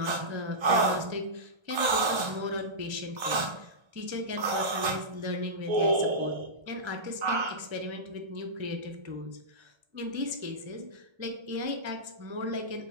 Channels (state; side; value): late; left; 1.3 ms